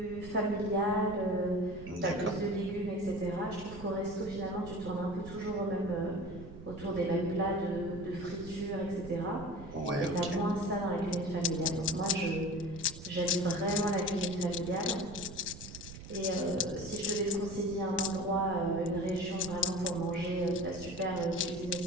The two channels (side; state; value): right; noise; rumble, 13 dB below the sound